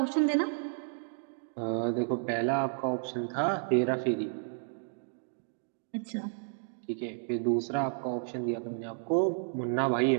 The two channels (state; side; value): silent; left; digital silence